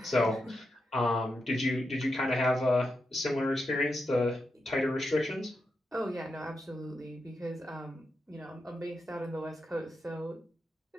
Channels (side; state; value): both; normal; correlation 0.86